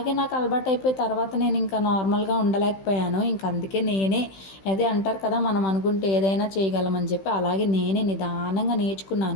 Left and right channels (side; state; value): right; late; 16 ms